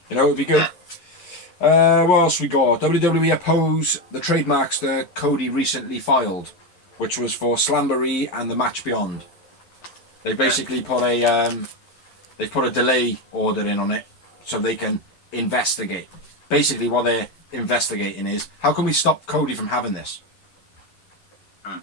You know, it'd be good. What else we got? WWE oppose the trademarks that Cody recently filed, which was for Slamboree and the Match Beyond. They basically put a they've put a delay order in on it so they can investigate. Basically, what they're investigating is how can we stop Cody from having this.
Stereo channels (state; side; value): late; right; 11 ms